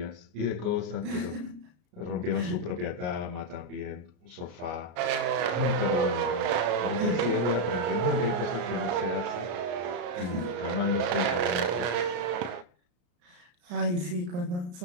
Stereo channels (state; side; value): late; left; 34 ms